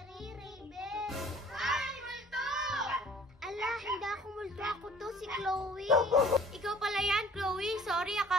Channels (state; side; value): normal; both; correlation 0.51